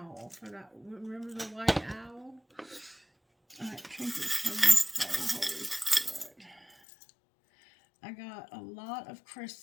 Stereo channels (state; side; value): drops out; right; at 6.8 s